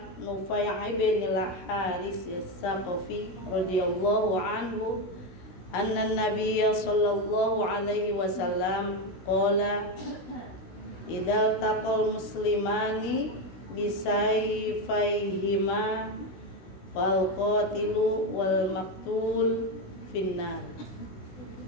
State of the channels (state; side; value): late; right; 16 ms